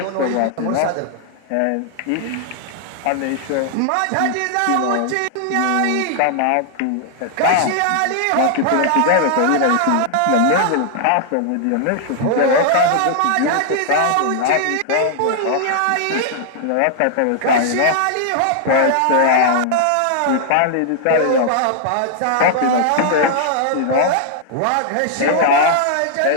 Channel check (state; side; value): different; both; correlation -0.01